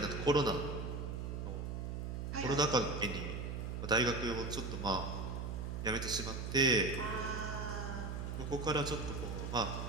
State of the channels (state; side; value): noise; right; hum, 4 dB below the sound